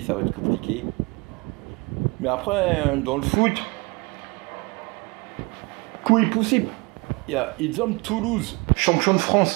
ça va être compliqué. Mais après, dans le foot, coup est possible. Il y a Toulouse, champion de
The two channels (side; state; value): left; quieter; 27.6 dB